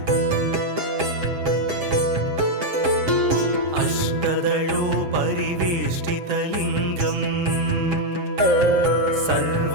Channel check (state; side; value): late; left; 7.6 ms